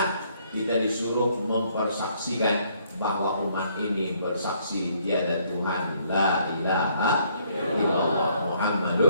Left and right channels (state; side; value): inverted; both; correlation -0.67